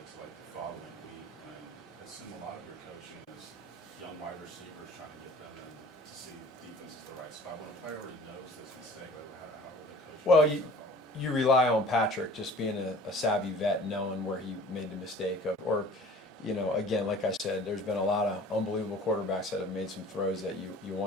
to like the following week when I assume a lot of your coaching is young wide receivers trying to get them in to see defense is the right spot? When a player already knows this mistake, how are the coaches? Well, you rely on Patrick just being a savvy vet, knowing where he made the mistake of, or again, like I said, there's been a lot of unbelievable quarterbacks that have made some throws that you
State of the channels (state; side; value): normal; both; correlation 0.46